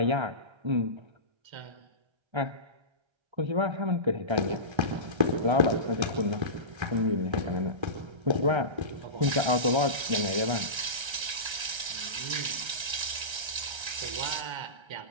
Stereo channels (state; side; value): late; left; 1.3 ms